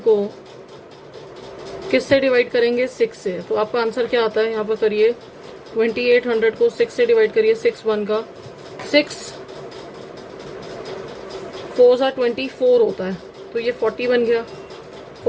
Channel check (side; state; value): both; identical; correlation 1.00